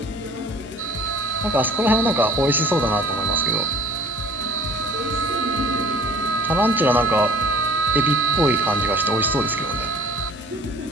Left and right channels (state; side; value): normal; both; correlation 0.49